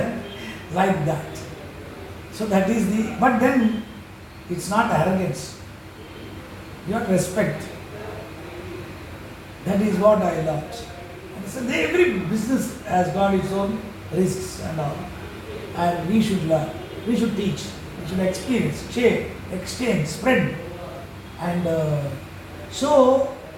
Like that. So that is the, but then it's not arrogance. You have respect. That is what I learned. So every business has got its own risks and all. And we should learn. We should teach. We should experience, share, exchange, spread. And so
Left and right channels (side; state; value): both; identical; correlation 1.00